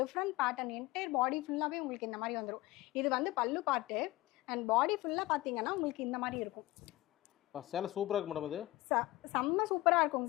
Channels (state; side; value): quieter; right; 18.7 dB